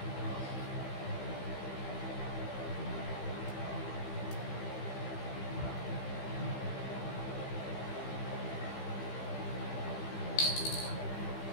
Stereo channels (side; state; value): right; late; 15 ms